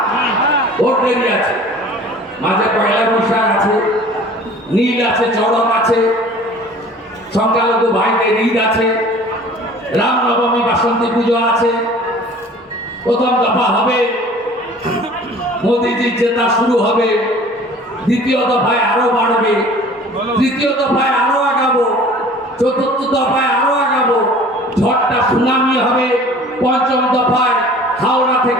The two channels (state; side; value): normal; both; correlation 0.47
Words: ভোট দেরি আছে, মাঝে পয়লা বৈশাখ আছে, নীল আছে, চড়ক আছে, সংখ্যালঘু ভাইদের ঈদ আছে, রামনবমী, বাসন্তী পুজো আছে, প্রথম দফা হবে, মোদীজির জেতা শুরু হবে, দ্বিতীয় দফায় আরো বাড়বে, তৃতীয় দফায় আরো আগাবো, চতুর্থ দফায় আরো আগাবো, ঝড়টা সুনামি হবে, পঞ্চম দফায় হাওড়া